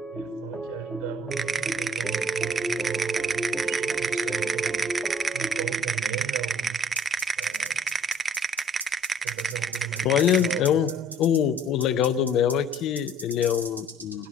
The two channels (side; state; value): both; normal; correlation 0.56